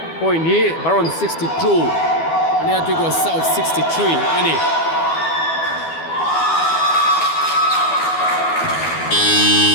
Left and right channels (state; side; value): late; right; 12 ms